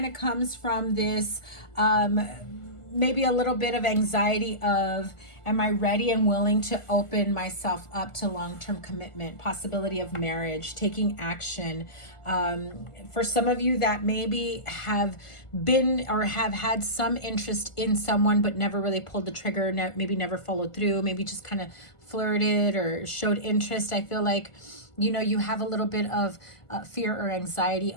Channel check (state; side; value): late; right; 1.5 ms